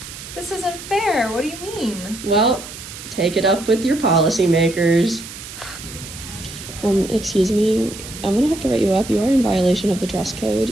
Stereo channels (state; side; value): noise; right; hiss, 13 dB below the sound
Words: This isn't fair. What do you mean? Well, take it up with your policymakers. Excuse me, I'm gonna have to write you up. You are in violation of the dress code.